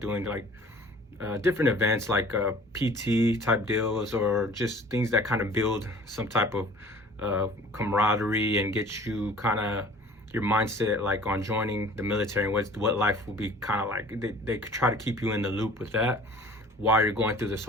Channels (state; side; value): normal; both; correlation 0.48